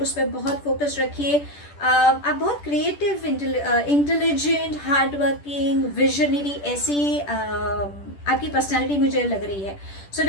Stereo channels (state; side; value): late; right; 10 ms